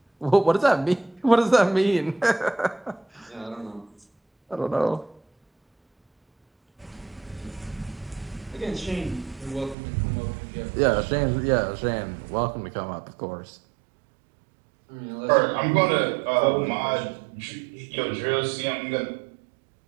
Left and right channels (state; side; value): drops out; left; at 9.8 s